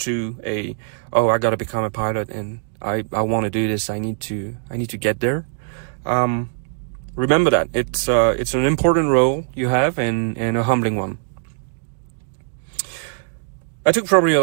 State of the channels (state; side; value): silent; left; digital silence